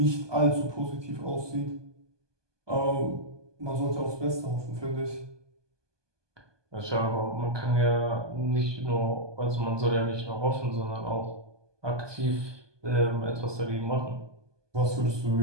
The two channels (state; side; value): late; left; 1.2 ms